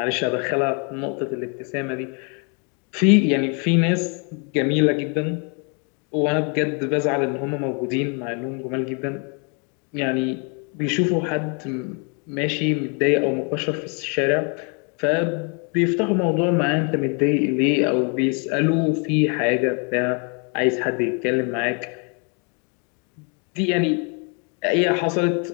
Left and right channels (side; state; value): right; quieter; 36.4 dB